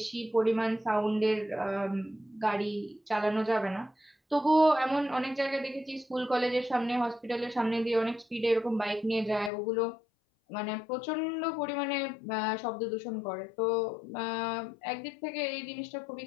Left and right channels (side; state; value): right; drops out; at 9.5 s